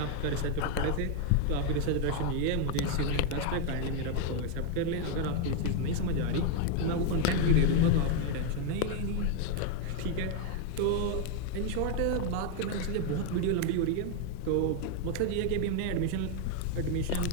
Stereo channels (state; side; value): different; both; correlation 0.01